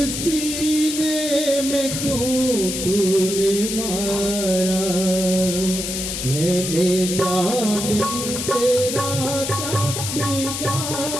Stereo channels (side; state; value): left; noise; hiss, 4 dB below the sound